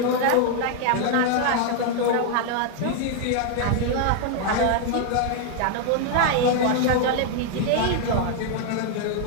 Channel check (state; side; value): different; both; correlation 0.00